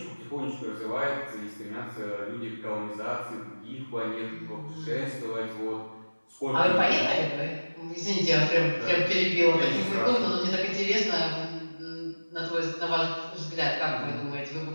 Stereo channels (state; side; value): inverted; both; correlation -1.00